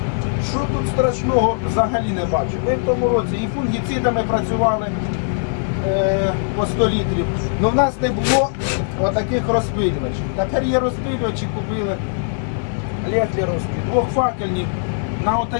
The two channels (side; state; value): right; silent; digital silence